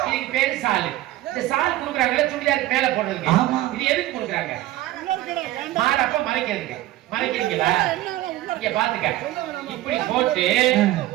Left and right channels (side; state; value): left; quieter; 15.5 dB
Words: இதுக்கு பேரு சாலு இந்த சால் குடுக்குறாங்கல்ல சுடிதாருக்கு மேல போடுறதுக்கு இது எதுக்கு குடுக்குறாங்க மாறப்ப மறைக்கிறதுக்கு மறைக்கிறீங்களா இங்க பாத்துக்க இப்படி போட்டு